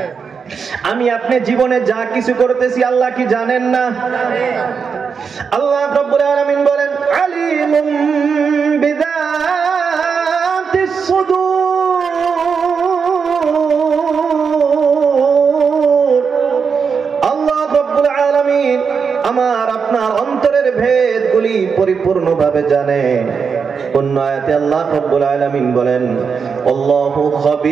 আমি আপনি জীবনে যা কিছু করতেছি আল্লাহ কি জানেন না? আল্লাহ রাব্বুল আলামিন বলেন, আলিমুম বিযাতিস সুদূর। আল্লাহ রাব্বুল আলামিন আমার আপনার অন্তরের ভেদগুলি পরিপূর্ণভাবে জানে। অন্য আয়াতে আল্লাহ রাব্বুল আলামিন বলেন, আল্লাহু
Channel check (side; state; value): left; quieter; 5.9 dB